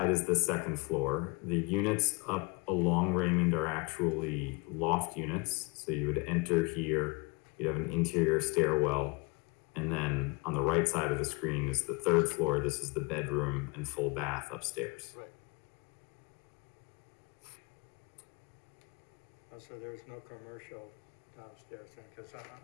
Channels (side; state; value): right; quieter; 29.7 dB